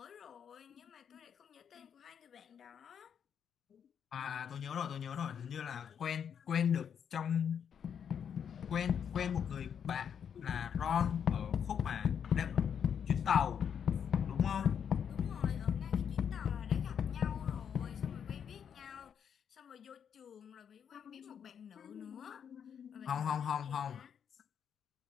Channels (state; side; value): quieter; right; 7.9 dB